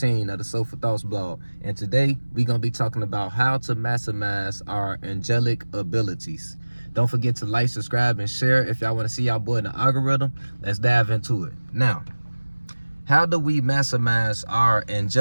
of the Soulful Thoughts blog. And today we gonna be talking about how to maximize our angelic abilities. Don't forget to like, subscribe, and share if y'all want to see y'all boy in the algorithm. Let's dive into it. Now, how do we maximize our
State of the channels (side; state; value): both; inverted; correlation -1.00